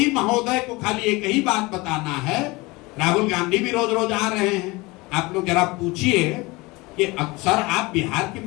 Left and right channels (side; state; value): right; quieter; 23.4 dB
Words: महोदय को खाली एक ही बात बताना है, राहुल गांधी भी रोज रोज आ रहे हैं, आप लोग जरा पूछिए कि अक्सर आप बिहार की